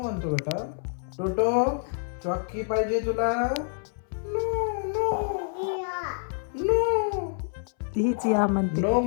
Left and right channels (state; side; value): silent; right; 60 dB below the other